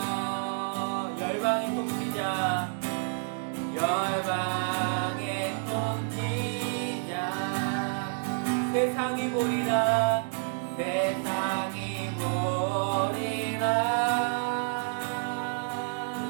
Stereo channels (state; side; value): silent; left; digital silence